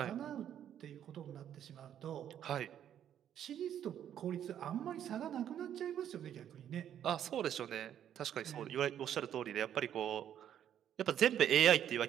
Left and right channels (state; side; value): quieter; left; 10.1 dB